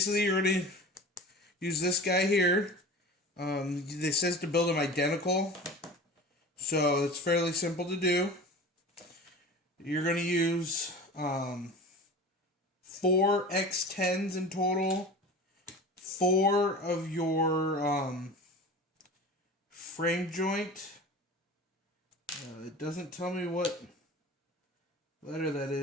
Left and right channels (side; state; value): both; normal; correlation 0.36